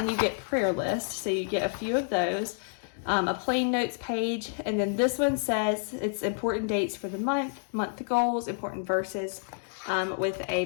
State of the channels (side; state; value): right; silent; digital silence